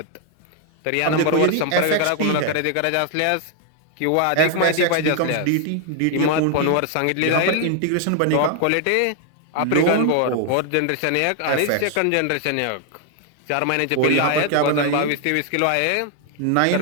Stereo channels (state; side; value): different; both; correlation 0.00